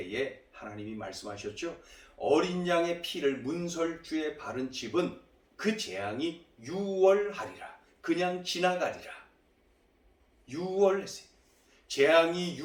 하나님이 말씀하셨죠. 어린 양의 피를 문설주에 바른 집은 그 재앙이 6월하리라. 그냥 지나가리라. 6월 했어요. 재앙이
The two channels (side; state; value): both; identical; correlation 1.00